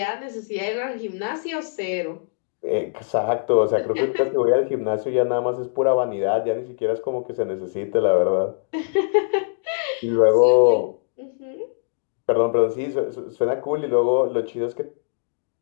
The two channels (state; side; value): silent; right; 64 dB below the other